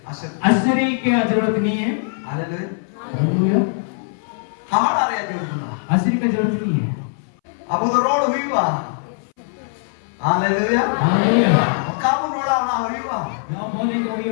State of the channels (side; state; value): right; silent; 62 dB below the other